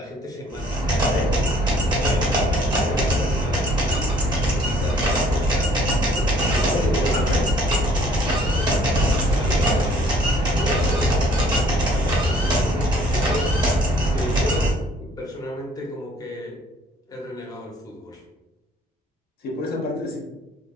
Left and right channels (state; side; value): normal; both; correlation 0.58